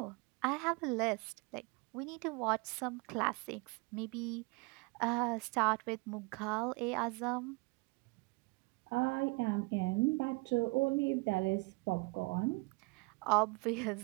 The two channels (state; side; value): quieter; left; 28.2 dB